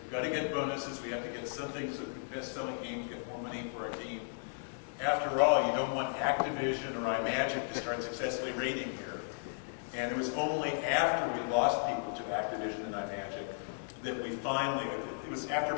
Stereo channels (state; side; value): silent; right; digital silence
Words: we've got to get bonuses, we have to get something so the best-selling games get more money for our team. After all, you don't want Activision or iMagic to start successfully raiding here. And it was only after we lost people to Activision and iMagic that we finally, it was after